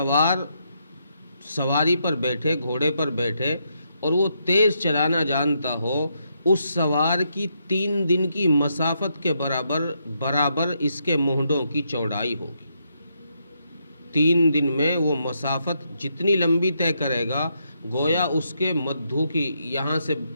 سواری پر بیٹھے، گھوڑے پر بیٹھے، اور وہ تیز چلانا جانتا ہو، اس سوار کی 3 دن کی مسافت کے برابر اس کے مونڈوں کی چوڑائی ہوگی۔ 3 دن میں وہ مسافت جتنی لمبی طے کرے گا، گویا اس کے مدھو کی یہاں سے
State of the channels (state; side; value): inverted; both; correlation -0.78